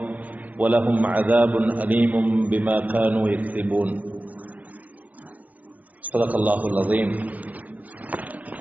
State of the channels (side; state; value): left; late; 0.077 ms